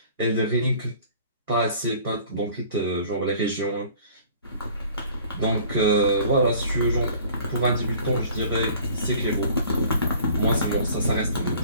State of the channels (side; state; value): both; inverted; correlation -0.51